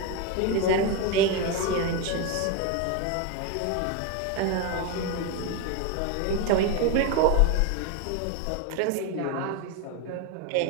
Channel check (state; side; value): different; both; correlation 0.03